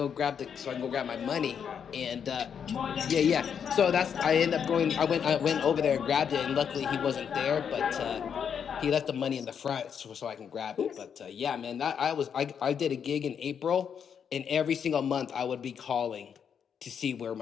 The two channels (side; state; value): right; quieter; 7.5 dB